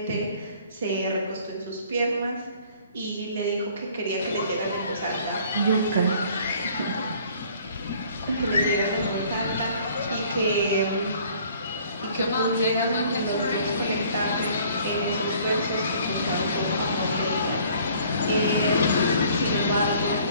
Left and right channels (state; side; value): inverted; both; correlation -0.56